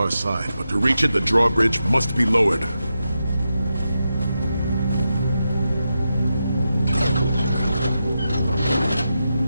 side, but to reach it, the drawbridge must be lowered.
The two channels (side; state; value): both; inverted; correlation -0.88